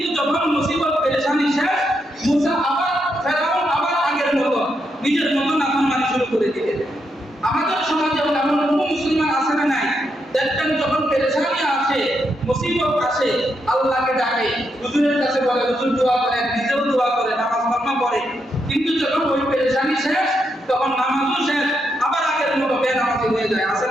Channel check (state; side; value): normal; both; correlation 0.81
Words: যখন মুসিবত পেরেশানি শেষ, মুসা আবার ফেরাউন আবার আগের মতো নিজের মতো নাফরমানি শুরু করে দিলেন। আমাদের সমাজে এমন মুসলমান আছে না নাই? দেখবেন যখন পেরেশানি আসে, মুসিবত আসে, আল্লাহকে ডাকে, হুজুরের কাছে বলে, হুজুর দোয়া করেন, নিজেও দোয়া করে, নামাজ কালামা পড়ে। কিন্তু যখন ওই পেরেশানি শেষ, তখন নামাজও শেষ, আবার আগের মতো বেনামাজি হয়ে যায়। আছে